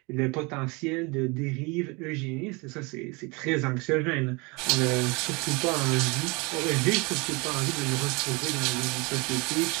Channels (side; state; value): left; quieter; 27.7 dB